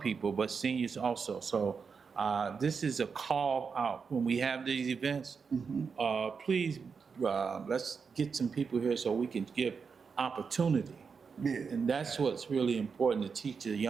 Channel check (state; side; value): quieter; left; 5.6 dB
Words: but seniors also. So this is a call out when we have these events. Please, let's get some people here so we can give opportunity. Yeah. And that's what's really important, to teach the